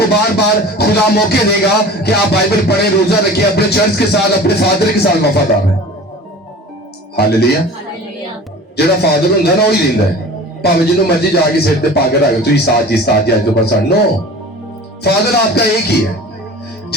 बार बार खुदा मौके देगा कि आप बाइबल पढ़े, रोजा रखिए, अपने चर्च के साथ, अपने फादर के साथ वफादार हैं। हालेलुया। ਜਿਹੜਾ ਫਾਦਰ ਹੁੰਦਾ ਨਾ ਉਹ ਹੀ ਦਿੰਦਾ ਹੈ, ਭਾਵੇਂ ਜਿਹਨੂੰ ਮਰਜ਼ੀ ਜਾ ਕੇ ਸਿਰ ਤੇ ਪਾ ਕੇ ਰੱਖ ਤੁਸੀਂ साथ ही आज तो बस नो। फादर आपका एक ही है,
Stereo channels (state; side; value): normal; both; correlation 0.40